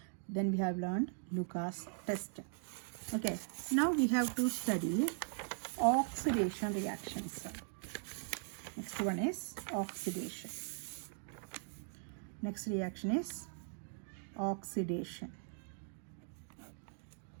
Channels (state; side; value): silent; left; 51 dB below the other